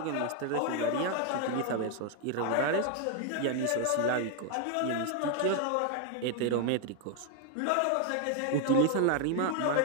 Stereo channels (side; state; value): both; different; correlation 0.01